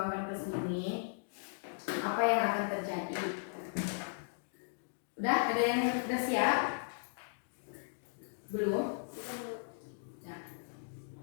ke sini. Apa yang akan terjadi? Udah ada yang udah siap? Belum? Nah,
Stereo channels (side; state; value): right; silent; digital silence